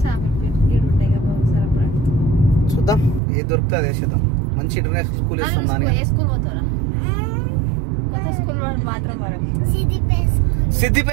చూద్దాం ఏది దొరుకుతుంది అది వేసేద్దాం. మంచి ఇంటర్నేషనల్ స్కూల్ వేస్తాం నాని అని.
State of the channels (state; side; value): drops out; left; at 3.2 s